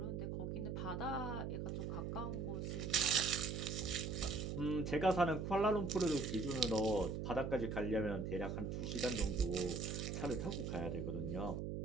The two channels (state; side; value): noise; right; hum, 3 dB below the sound